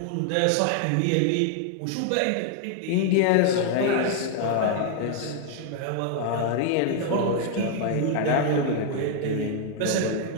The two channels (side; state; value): both; different; correlation 0.00